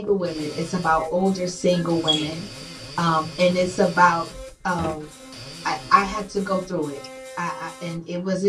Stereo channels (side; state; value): both; identical; correlation 1.00